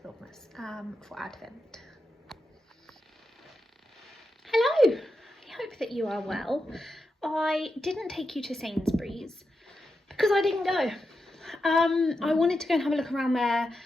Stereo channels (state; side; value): normal; both; correlation 0.88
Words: for Advent. Hello, I hope that you are well. I didn't take you to Sainsbury's because I didn't go. I wanted to go and have a look around there